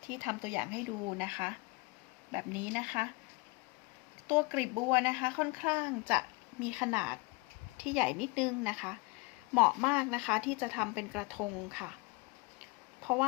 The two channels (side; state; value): right; quieter; 26.0 dB